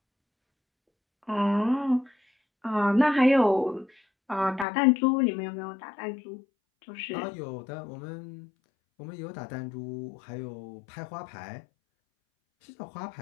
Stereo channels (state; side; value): drops out; right; at 4.7 s